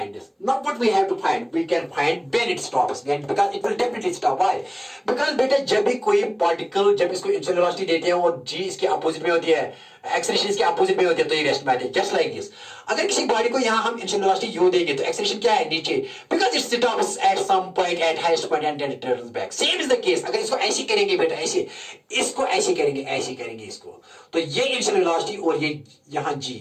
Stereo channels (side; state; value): both; identical; correlation 1.00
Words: this, not what we have to find, we can find when it stops, because it will definitely stop. Why? Because बेटा जब भी कोई पार्टिकल, जब इसको इनिशियल वेलोसिटी देते हैं और जी इसके अपोजिट में होती है, एक्सेलरेशन इसके अपोजिट में होती है, तो ये रेस्ट में आती है, जस्ट लाइक दिस। अगर किसी बॉडी को यहां हम इनिशियल वेलोसिटी यू देंगे तो एक्सेलरेशन क्या है नीचे, because it stops at some point at highest point and then it turns back. Same is the case, अगर इसको ऐसे करेंगे बेटा, ऐसे इसको ऐसे करेंगे, ऐसे करेंगे इसको, तो ये इनिशियल वेलोसिटी और ये यहां